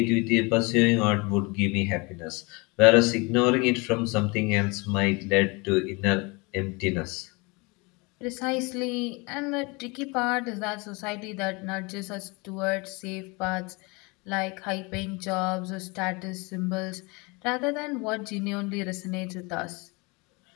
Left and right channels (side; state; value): right; quieter; 27.7 dB